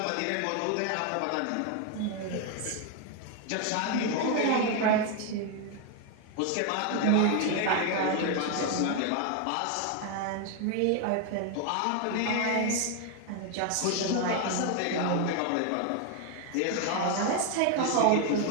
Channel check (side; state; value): both; different; correlation 0.01